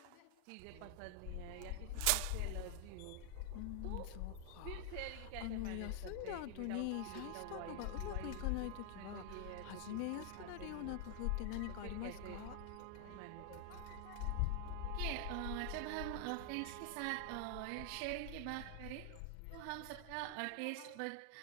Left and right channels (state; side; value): different; both; correlation 0.00